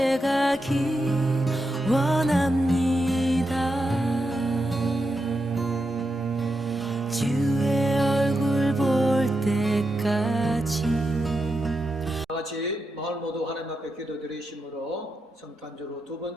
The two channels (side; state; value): both; normal; correlation 0.86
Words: 가기 원합니다. 주의 얼굴 볼 때까지. 다같이 마을 모두 하나님 앞에 기도드리심으로 성탄주로 두